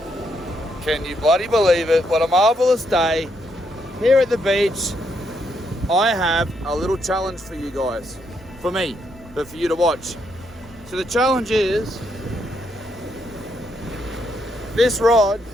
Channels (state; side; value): normal; both; correlation 0.77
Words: Can you bloody believe it? What a marvelous day here at the beach. I have a little challenge for you guys, for me, but for you to watch. So the challenge is this rod.